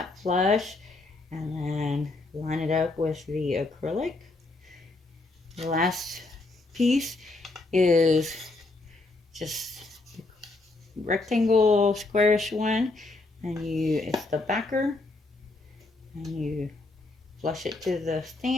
flush and then line it up with the acrylic. The last piece is just rectangle squarish one, and it's the backer, and you flush it to the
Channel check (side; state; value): right; quieter; 3.2 dB